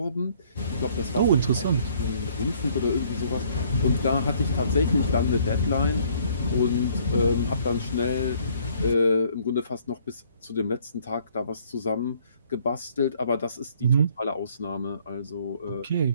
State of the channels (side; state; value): both; inverted; correlation -0.62